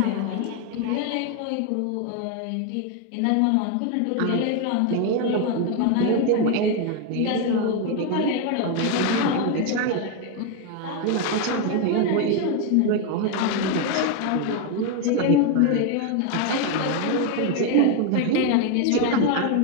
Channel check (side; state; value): both; different; correlation 0.01